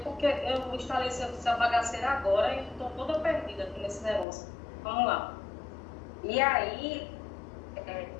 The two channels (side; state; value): right; drops out; at 4.2 s